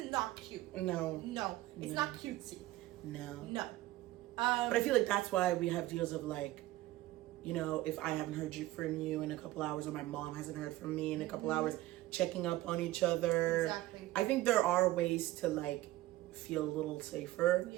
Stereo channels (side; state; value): left; quieter; 16.7 dB